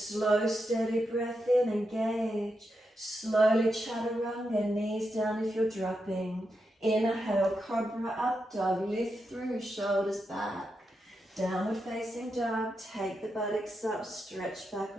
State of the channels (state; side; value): normal; both; correlation 0.86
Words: steady breath in, engage. Slowly chaturanga, knees down if you're dropping. Inhale, cobra up dog, lift through, shoulders back. Downward facing dog, take the buttocks up, stretch back